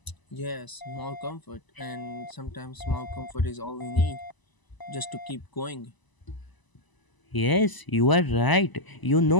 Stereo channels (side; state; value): right; late; 1.0 ms